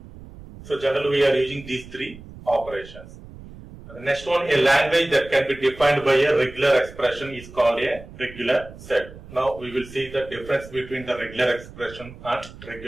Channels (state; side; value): noise; right; rumble, 17 dB below the sound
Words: So generally we are using these 3 operations. And the next one, a language that can be defined by a regular expression is called a regular set. Now we will see the difference between the regular expression and